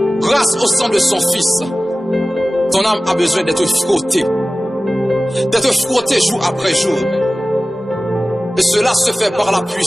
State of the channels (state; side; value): normal; both; correlation 0.97